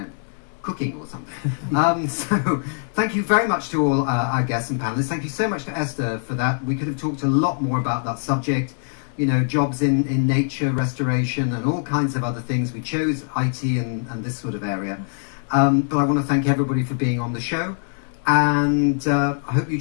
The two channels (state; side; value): silent; right; digital silence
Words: cooking or something. So thank you very much to all our guests and panelists. Thank you so much to Esther for that. We could have talked a lot more about that subject, you know, jobs in nature, restoration, and all kinds of other things. We chose IT and this sort of area. But I want to thank everybody for being on the show. And I hope you